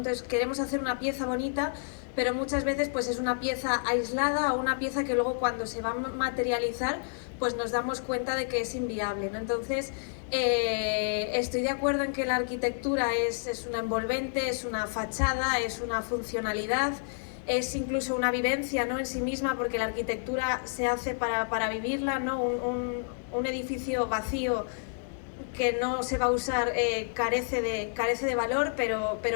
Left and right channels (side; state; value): right; silent; digital silence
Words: queremos hacer una pieza bonita, pero muchas veces pues es una pieza aislada o una pieza que luego cuando se va a materializar pues nos damos cuenta de que es inviable, ¿no? Entonces estoy de acuerdo en que la arquitectura es una envolvente, es una fachada, es una funcionalidad, es incluso una vivencia, ¿no?, en sí misma, porque la arquitectura se hace para vivirla, ¿no? Un edificio vacío que no se va a usar carece de valor,